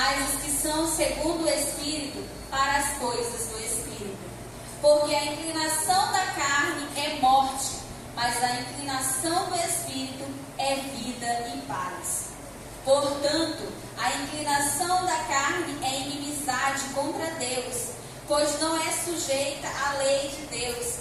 os que são segundo o Espírito para as coisas do Espírito. Porque a inclinação da carne é morte, mas a inclinação do Espírito é vida e paz. Portanto, a inclinação da carne é inimizade contra Deus, pois não é sujeita à lei de Deus,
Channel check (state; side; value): identical; both; correlation 1.00